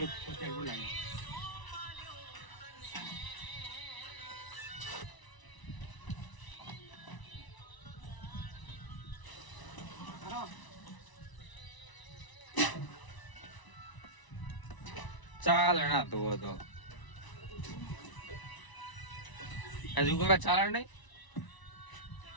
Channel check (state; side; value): late; right; 1.0 ms